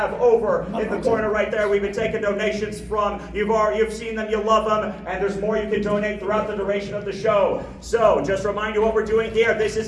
over in the corner right there. We've been taking donations from. You've seen them, you love them, and there's more you can donate throughout the duration of the show. So, just remind you what we're doing here. This is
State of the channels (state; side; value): identical; both; correlation 1.00